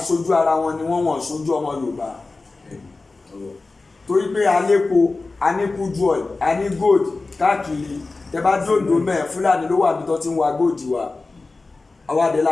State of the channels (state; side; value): quieter; right; 3.6 dB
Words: ara wọn ni wọ́n ṣojú ọmọ Yorùbá torí pé alépo aníkújú oil aní gold káàkiri tẹ bá dòdò mẹ́ẹ̀ Fúlàní ló wà bí tó ti ń wa gold wa àwàdé